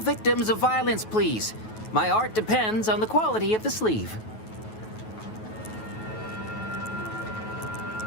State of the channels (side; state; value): right; late; 9.3 ms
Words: of violence, please. My art depends on the quality of the sleeve.